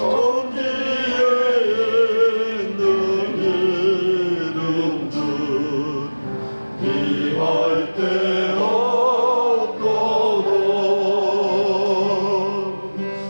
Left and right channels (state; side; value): inverted; both; correlation -1.00